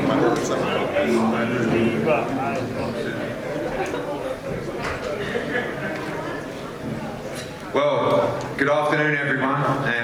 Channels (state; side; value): identical; both; correlation 1.00